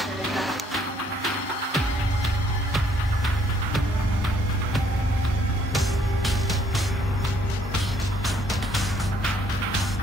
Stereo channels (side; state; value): both; normal; correlation 0.65